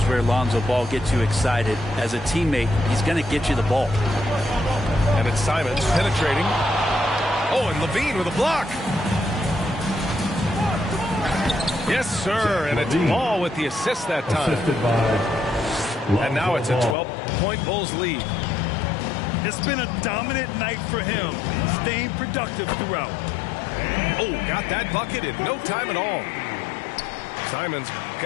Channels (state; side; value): drops out; right; at 16.9 s